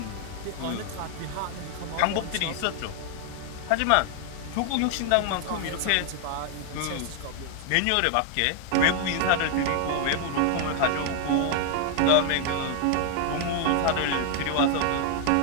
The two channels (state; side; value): different; both; correlation 0.00